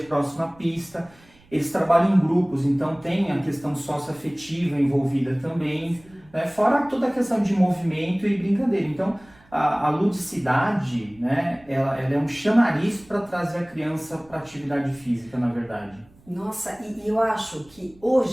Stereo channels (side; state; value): right; noise; rumble, 28 dB below the sound